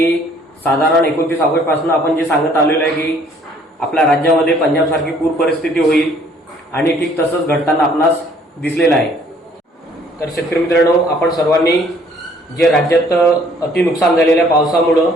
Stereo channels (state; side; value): normal; both; correlation 0.60